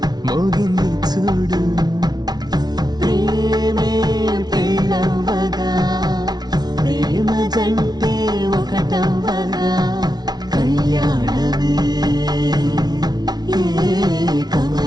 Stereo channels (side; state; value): left; late; 0.19 ms